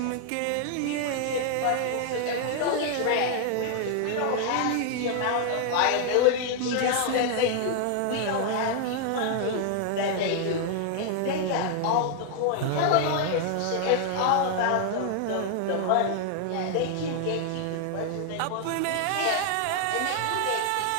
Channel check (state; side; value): different; both; correlation 0.00